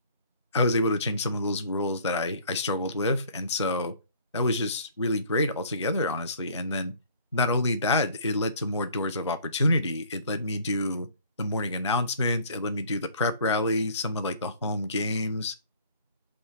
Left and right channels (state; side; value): inverted; both; correlation -0.53